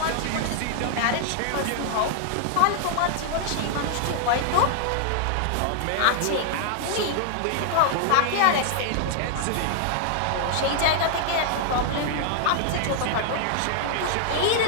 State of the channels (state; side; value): different; both; correlation 0.00